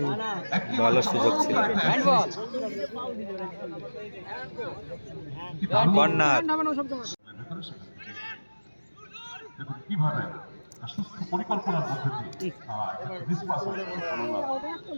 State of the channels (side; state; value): both; inverted; correlation -1.00